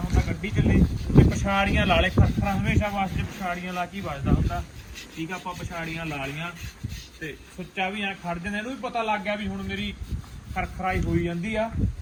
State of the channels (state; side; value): identical; both; correlation 1.00